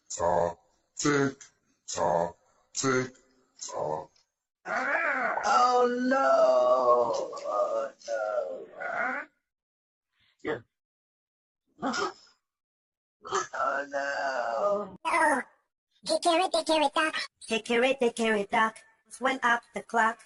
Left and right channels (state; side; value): identical; both; correlation 1.00